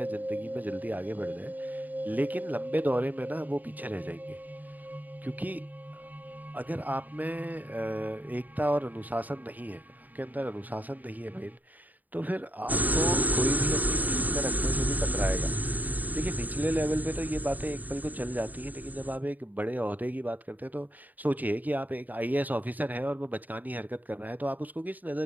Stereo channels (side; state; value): left; late; 0.083 ms